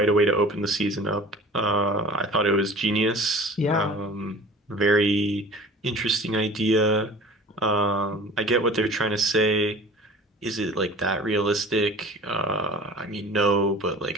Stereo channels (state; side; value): normal; both; correlation 0.43